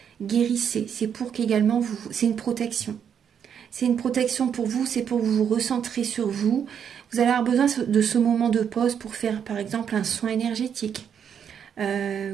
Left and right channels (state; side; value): quieter; left; 8.1 dB